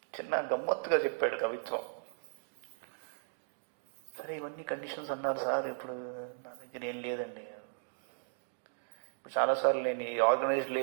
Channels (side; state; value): left; silent; digital silence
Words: చిన్న గమ్మత్తుగా చెప్పాడు కవిత్వం. సరే, ఇవన్నీ కండిషన్స్ అన్నారు సార్, ఇప్పుడు నా దగ్గర ఏం లేదండి. ఇప్పుడు చాలాసార్లు నేను ఈ ఆర్గనైజ్డ్